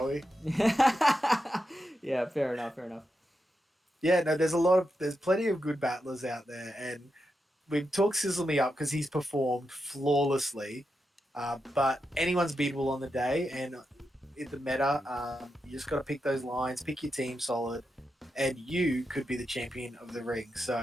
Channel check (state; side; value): normal; both; correlation 0.87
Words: we? Yeah, fair enough. Yeah, no, there's plenty of good battlers out there, and we've talked Cizzle up because he's performed flawlessly, but anyone's beatable on the day, and in the meta, you just got to pick those lines, pick your team solid, and you could be the champion of the ring. So